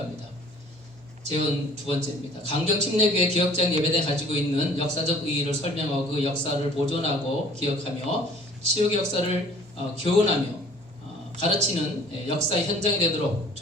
재원 두 번째입니다. 강경 침례교회 기억자형 예배당이 가지고 있는 역사적 의의를 설명하고 그 역사를 보존하고 기억하며 치유의 역사를 교훈하며 가르치는 역사의 현장이 되도록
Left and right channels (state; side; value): normal; both; correlation 0.52